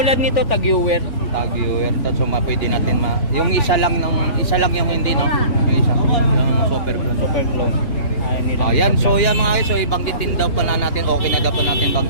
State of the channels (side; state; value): right; late; 2.8 ms